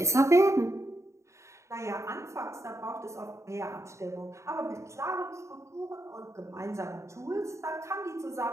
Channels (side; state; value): left; late; 0.14 ms